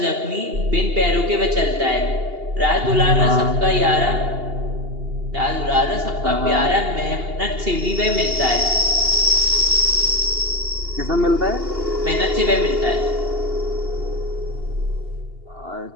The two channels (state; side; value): late; left; 2.8 ms